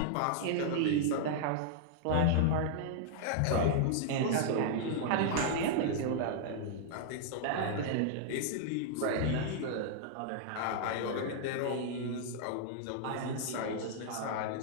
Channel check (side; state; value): both; different; correlation -0.01